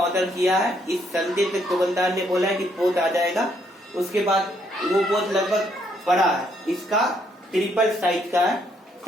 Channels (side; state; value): both; normal; correlation 0.71